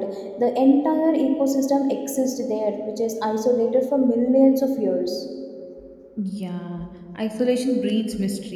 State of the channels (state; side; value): identical; both; correlation 1.00